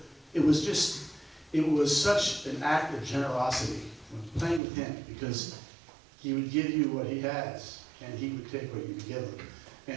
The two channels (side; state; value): left; drops out; at 4.6 s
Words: It was such an act of generosity when playing with him, because he would give you what he has, and he would take what you would give him.